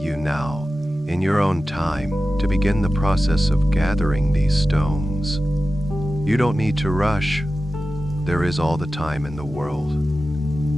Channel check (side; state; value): both; normal; correlation 0.94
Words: now, in your own time, to begin the process of gathering these stones. You don't need to rush. There is all the time in the world.